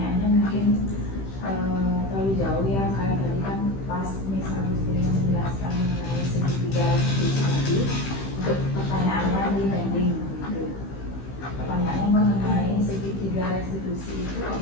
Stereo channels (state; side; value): late; right; 15 ms